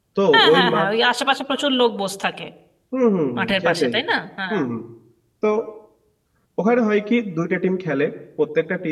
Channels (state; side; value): identical; both; correlation 1.00